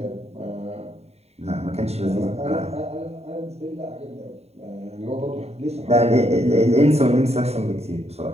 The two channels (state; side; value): late; left; 0.30 ms